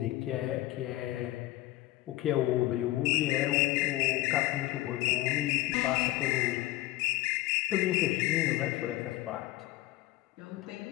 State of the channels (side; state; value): right; quieter; 17.0 dB